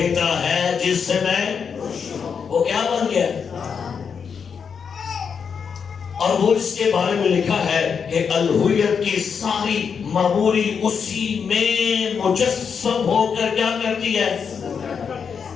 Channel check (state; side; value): quieter; right; 6.5 dB